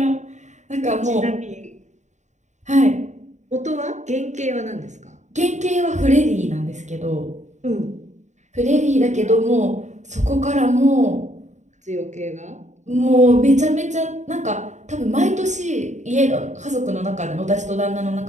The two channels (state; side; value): late; left; 0.34 ms